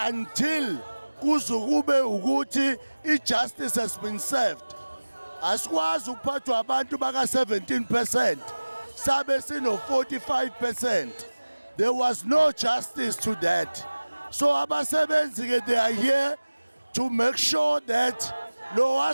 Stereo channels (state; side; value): inverted; both; correlation -1.00